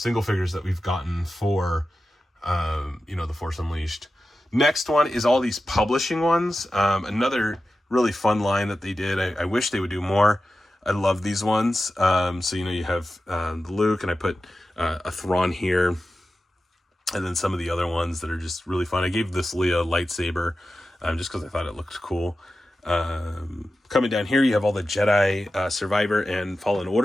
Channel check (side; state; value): both; normal; correlation 0.93